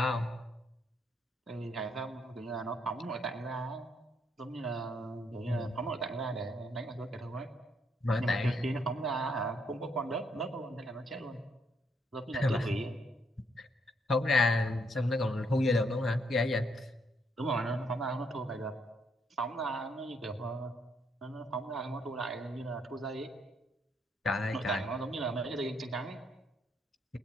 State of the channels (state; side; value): normal; both; correlation 0.73